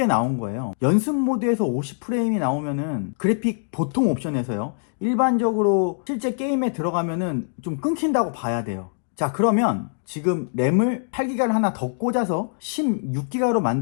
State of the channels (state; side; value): silent; right; digital silence